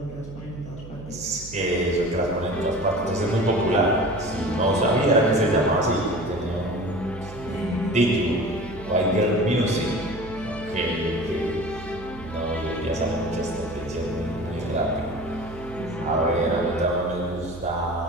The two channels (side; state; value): right; noise; hum, 15 dB below the sound